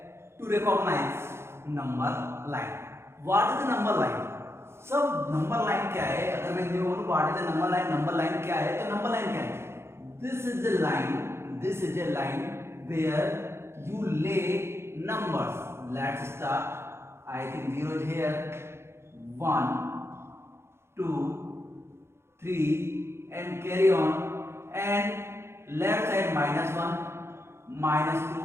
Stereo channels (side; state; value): left; late; 0.12 ms